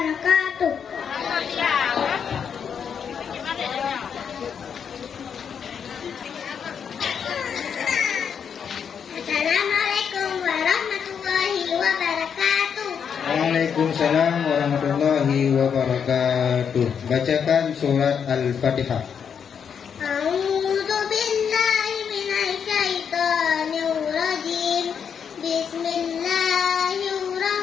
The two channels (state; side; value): quieter; right; 7.3 dB